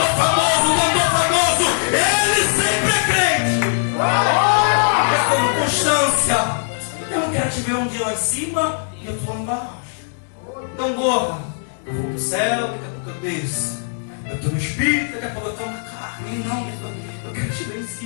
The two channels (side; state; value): right; silent; 66 dB below the other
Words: famoso, cantor famoso, ele sempre é crente. Mas como constância, eu não quero te ver um dia lá em cima e eu estou lá embaixo. Então, gorra, eu vou para o céu, daqui a pouco eu desço. Eu estou no espírito, daqui a pouco eu estou na carne. Não, eu quero te ver em